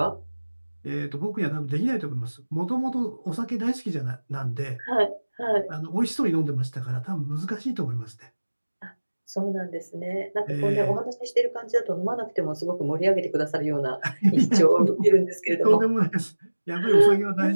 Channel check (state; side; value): inverted; both; correlation -1.00